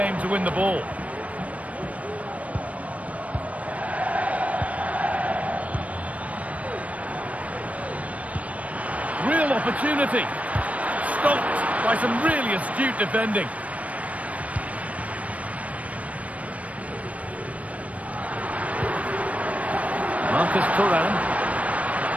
to win the ball. Real opportunity. Stopped by some really astute defending. Marcus Thuram.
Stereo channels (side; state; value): left; late; 0.067 ms